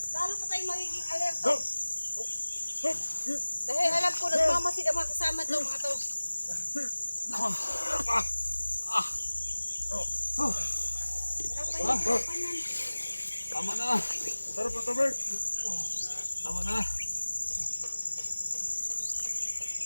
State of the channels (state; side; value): inverted; both; correlation -1.00